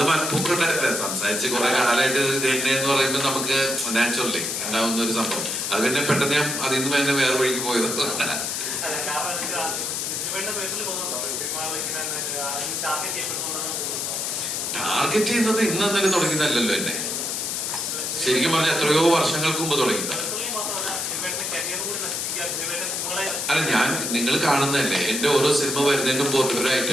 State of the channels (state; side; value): noise; left; hiss, 2 dB below the sound